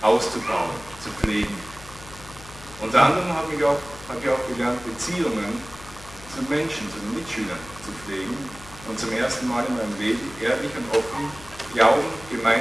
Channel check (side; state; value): left; noise; hum, 18 dB below the sound